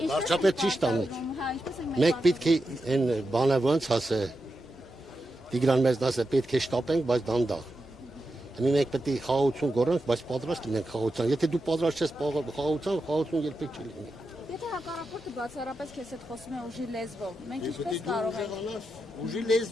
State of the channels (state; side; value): normal; both; correlation 0.88